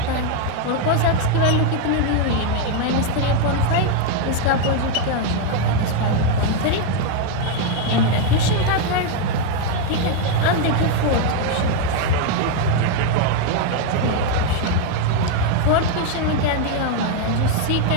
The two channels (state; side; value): different; both; correlation 0.01